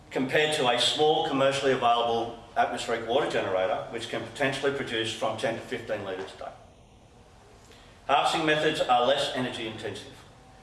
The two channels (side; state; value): both; identical; correlation 1.00